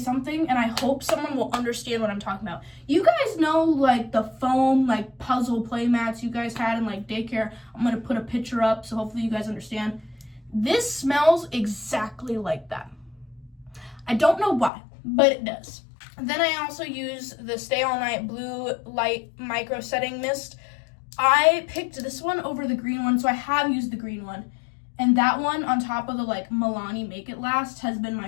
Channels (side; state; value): right; drops out; at 14.7 s